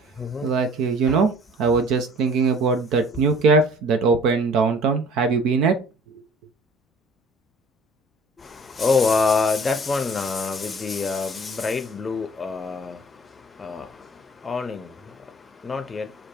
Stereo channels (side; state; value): both; normal; correlation 0.50